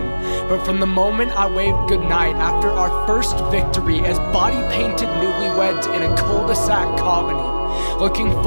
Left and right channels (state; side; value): inverted; both; correlation -1.00